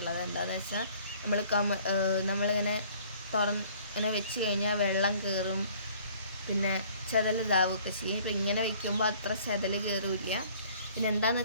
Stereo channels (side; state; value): both; inverted; correlation -0.56